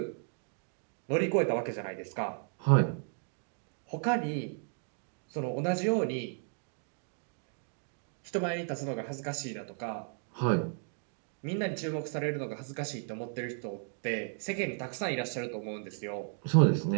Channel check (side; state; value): left; silent; 55 dB below the other